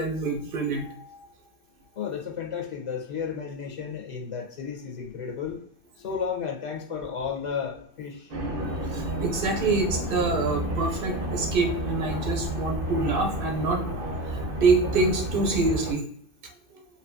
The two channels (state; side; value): late; left; 2.6 ms